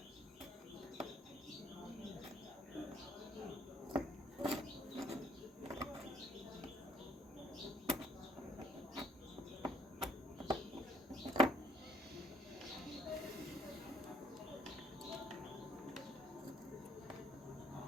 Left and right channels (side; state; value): both; normal; correlation 0.64